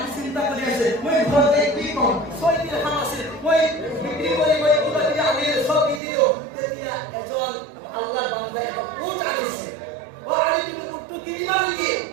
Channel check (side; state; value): left; drops out; at 6.0 s